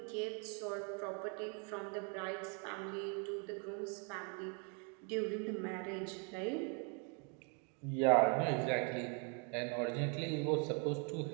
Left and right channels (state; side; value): quieter; left; 37.5 dB